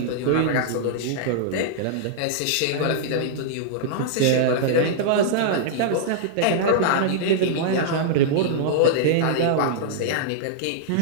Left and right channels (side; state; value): both; different; correlation -0.02